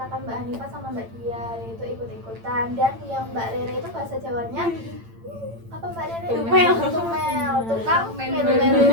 Mbak Hanifah sama Mbak Dia, yaitu ikut-ikutan. Dan yang Mbak Rere itu bahasa Jawanya apa Mbak Rere? Tumel, tukang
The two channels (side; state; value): left; late; 8.9 ms